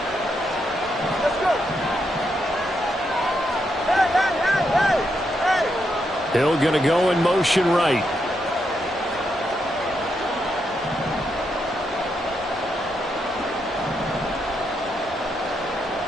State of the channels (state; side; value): normal; both; correlation 0.81